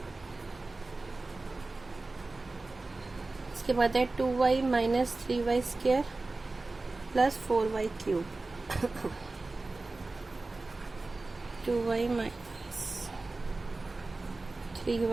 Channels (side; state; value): left; quieter; 3.4 dB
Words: इसके बाद है 2y minus 3y square plus 4y cube, 2y minus